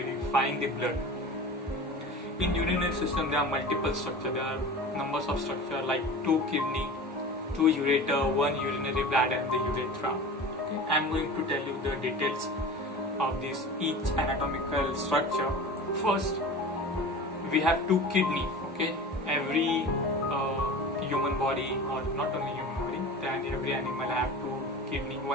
the blood. In urinary system, there are multiple structures. There are numbers of structure like 2 kidney, 2 ureter, 1 urinary bladder and the urethra. Okay? I'm going to tell you the details of this each anatomical structure. First, we have 2 kidney. Okay, every human body, or not only human body, then every animal have 2 kidney,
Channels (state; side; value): normal; both; correlation 0.35